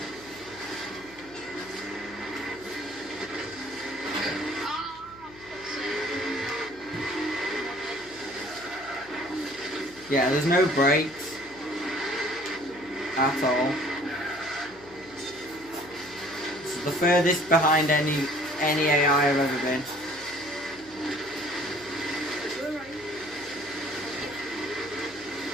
Yeah, there's no brakes at all. This is the furthest behind any AI I've ever been.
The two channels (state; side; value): noise; left; hum, 22 dB below the sound